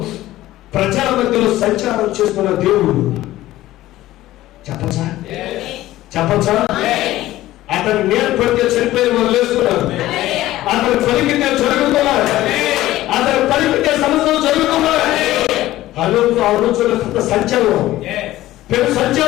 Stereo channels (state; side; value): quieter; right; 15.6 dB